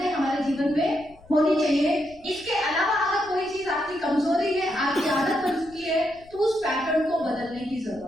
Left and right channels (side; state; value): left; noise; rumble, 25 dB below the sound